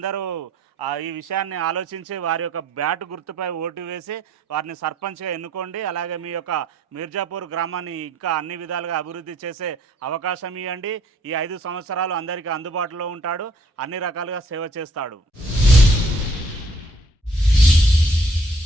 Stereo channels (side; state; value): both; normal; correlation 0.62